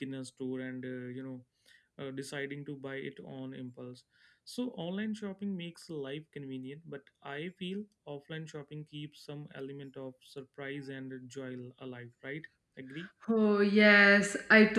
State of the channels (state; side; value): identical; both; correlation 1.00